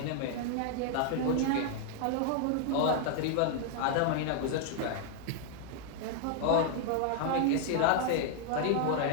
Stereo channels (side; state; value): both; different; correlation 0.00